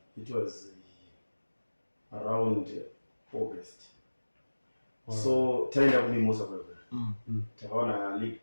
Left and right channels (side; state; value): both; inverted; correlation -1.00